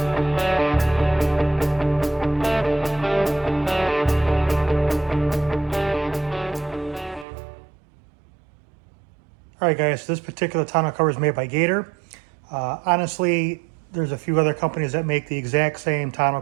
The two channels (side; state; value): left; drops out; at 7.2 s